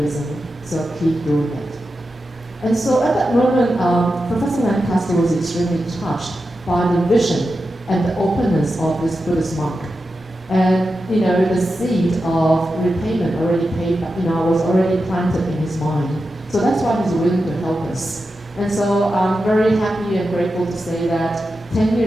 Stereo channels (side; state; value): both; normal; correlation 0.90